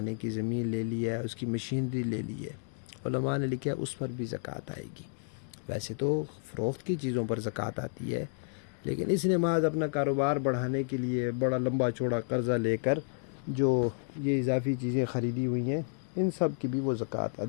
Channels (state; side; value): silent; right; digital silence